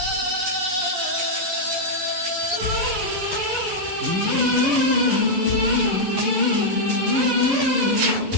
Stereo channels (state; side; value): late; left; 11 ms